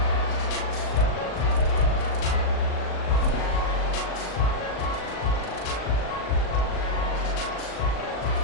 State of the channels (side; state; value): right; late; 38 ms